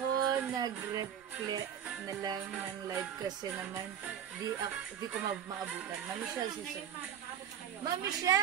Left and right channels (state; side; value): quieter; left; 9.3 dB